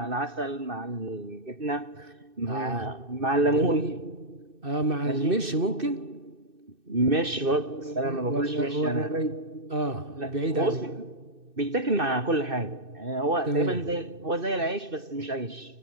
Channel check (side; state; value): left; late; 2.6 ms